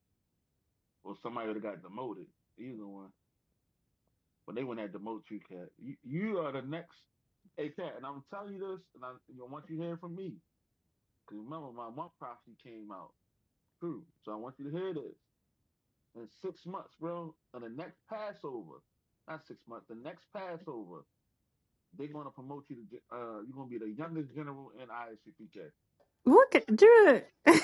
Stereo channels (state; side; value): identical; both; correlation 1.00